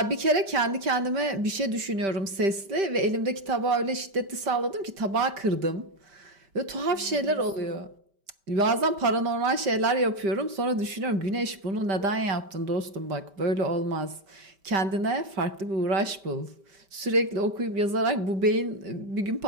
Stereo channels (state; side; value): late; left; 5.1 ms